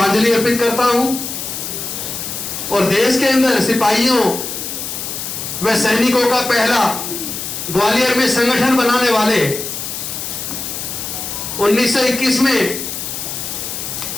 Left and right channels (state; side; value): noise; left; hiss, 6 dB below the sound